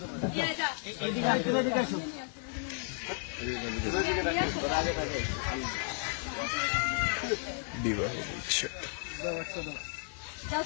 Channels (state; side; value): silent; right; 56 dB below the other